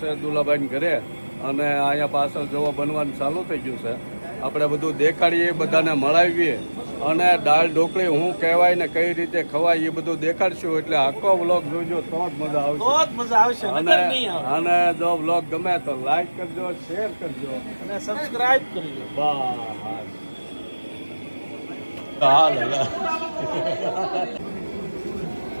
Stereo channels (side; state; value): both; inverted; correlation -1.00